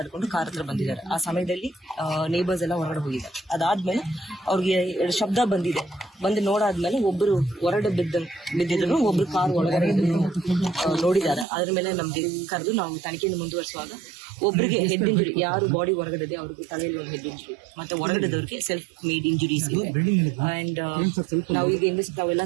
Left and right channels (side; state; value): left; drops out; at 11.5 s